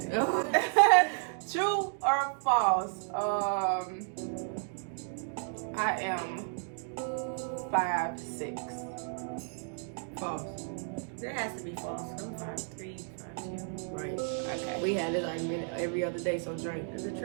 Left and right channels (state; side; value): silent; left; 56 dB below the other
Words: True or false? I am 5'6". False. There has to be false. I'm 5'3", 5'2". Right. Okay. We had this argument every other day, so drink. Is it